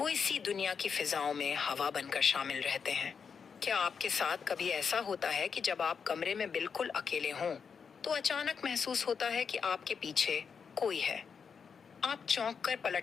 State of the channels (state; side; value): quieter; right; 6.2 dB